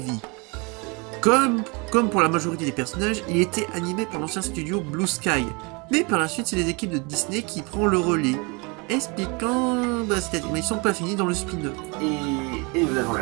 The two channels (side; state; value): left; quieter; 29.6 dB